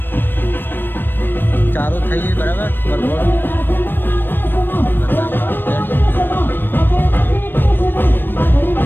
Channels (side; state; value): right; late; 0.096 ms